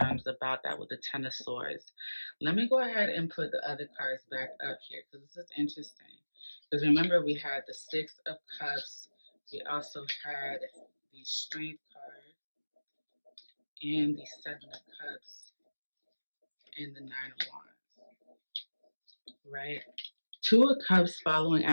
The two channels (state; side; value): inverted; both; correlation -1.00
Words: about that with the Ten of Swords. Let me go ahead and put the other cards back up here because this is interesting. Because remember, we had the Six of Cups, we also had the Strength card, and the Seven of Cups, and the Nine of Wands, right? Two of Cups following